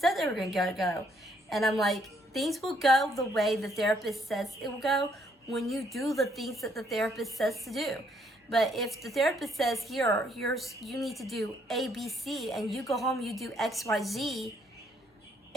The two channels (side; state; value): both; normal; correlation 0.69